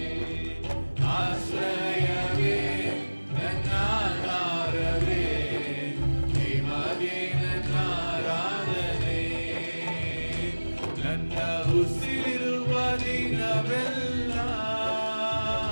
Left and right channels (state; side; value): inverted; both; correlation -1.00